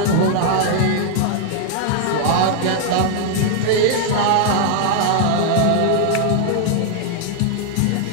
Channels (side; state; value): both; different; correlation 0.00